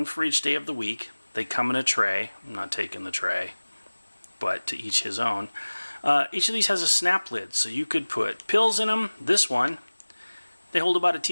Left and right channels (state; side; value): inverted; both; correlation -1.00